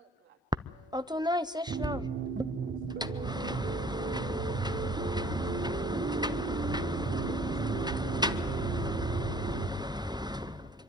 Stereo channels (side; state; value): both; normal; correlation 0.53